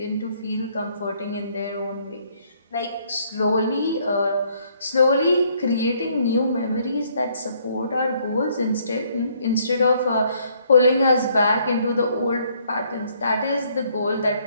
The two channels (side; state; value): both; inverted; correlation -0.66